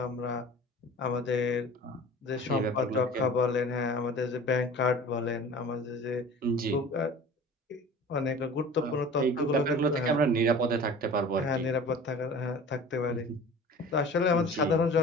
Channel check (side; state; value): both; normal; correlation 0.41